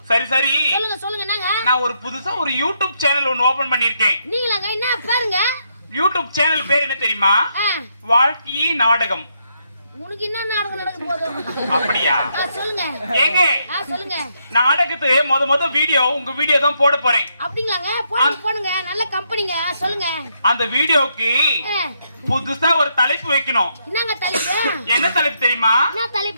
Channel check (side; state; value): both; inverted; correlation -0.77